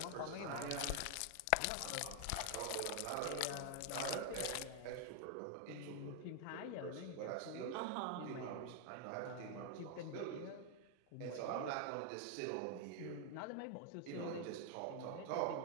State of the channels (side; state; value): both; different; correlation 0.00